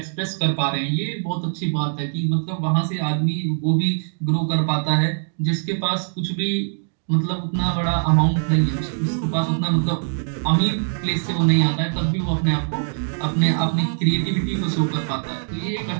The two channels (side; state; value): left; silent; digital silence